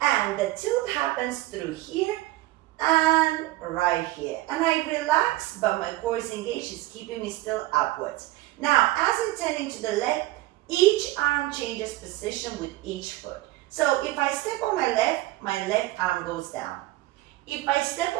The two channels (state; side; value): quieter; left; 17.8 dB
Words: and the tilt happens through here and right here. And I relax, but my core is engaged, it's keeping me still upwards. Now, as I turn into the left, each arm changes position with each foot. So if I step on my left arm goes down. If I step